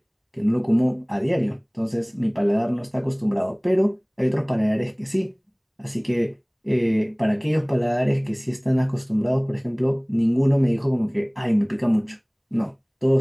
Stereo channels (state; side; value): identical; both; correlation 1.00